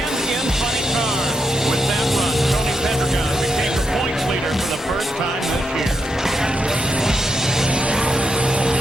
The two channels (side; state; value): both; normal; correlation 0.82